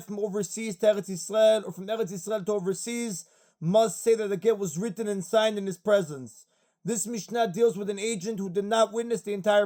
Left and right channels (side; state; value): both; identical; correlation 1.00